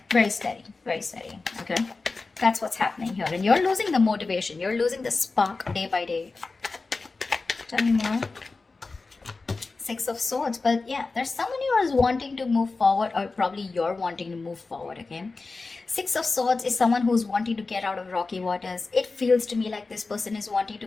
very steady, very steady, okay? That's what's happening here. And you're losing the motivation. You're losing the spark day by day. Tell me more. Six of Swords. But yeah, there's someone who is wanting to move forward, or probably you're wanting to move forward, okay? Six of Swords is someone who's wanting to get out of rocky waters. It feels to me like this person is wanting to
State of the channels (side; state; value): right; quieter; 3.8 dB